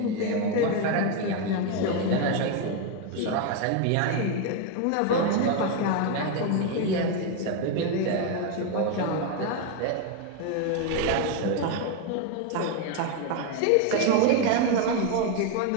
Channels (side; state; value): both; different; correlation 0.01